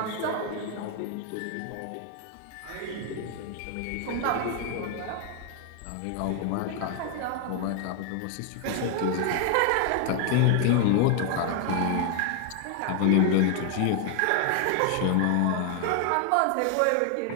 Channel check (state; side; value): different; both; correlation 0.00